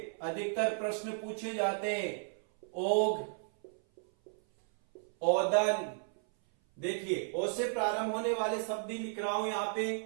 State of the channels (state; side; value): silent; left; 55 dB below the other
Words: अधिकतर प्रश्न पूछे जाते हैं, ओग, ओदन। देखिए ओ से प्रारंभ होने वाले शब्द ही लिख रहा हूं यहाँ पे,